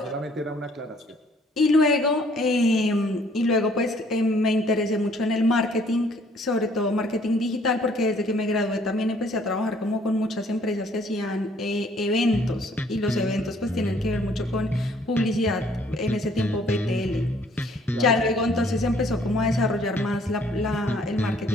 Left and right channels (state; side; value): normal; both; correlation 0.61